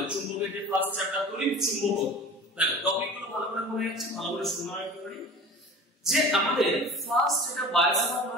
চুম্বকের যে ফার্স্ট চ্যাপ্টার তড়িৎ চুম্বকত্ব। দেখো টপিকগুলো ভালো করে মনে যাচ্ছে, ভালো করে শোনা রাখতে পারি যে আমাদের ফার্স্ট এটা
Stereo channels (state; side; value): normal; both; correlation 0.38